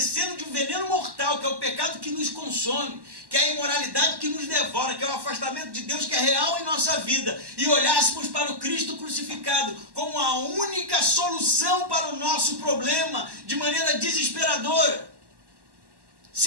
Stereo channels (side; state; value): left; late; 1.1 ms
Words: de um veneno mortal, que é o pecado que nos consome, que é a imoralidade que nos devora, que é o afastamento de Deus que é real em nossa vida, e olhássemos para o Cristo crucificado como a única solução para o nosso problema, de maneira desesperadora.